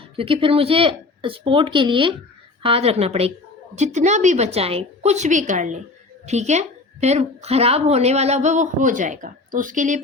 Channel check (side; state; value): right; quieter; 3.5 dB